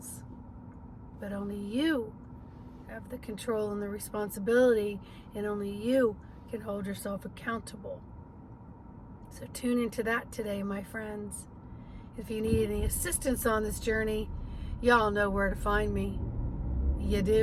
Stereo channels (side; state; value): both; identical; correlation 1.00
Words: But only you have the control and the responsibility, and only you can hold yourself accountable. So tune into that today, my friends. If you need any assistance on this journey, y'all know where to find me. You